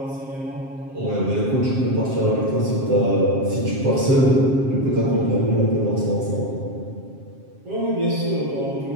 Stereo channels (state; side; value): late; left; 7.5 ms